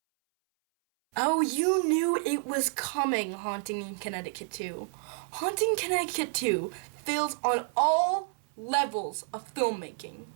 Oh, you knew it was coming, Haunting in Connecticut 2. Haunting Connecticut 2 fails on all levels of filmmaking.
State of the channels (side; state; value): left; silent; 58 dB below the other